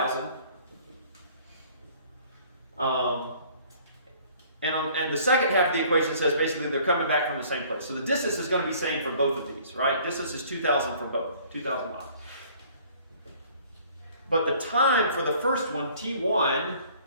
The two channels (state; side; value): inverted; both; correlation -0.55